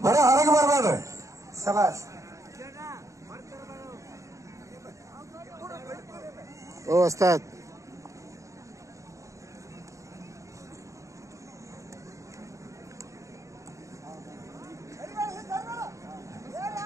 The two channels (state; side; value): late; left; 0.15 ms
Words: ಬರೀ ಹೊರಗೆ ಬರ್ಬೇಡ್ರಿ. ಶಬಾಷ್. ಓ ಉಸ್ತಾದ್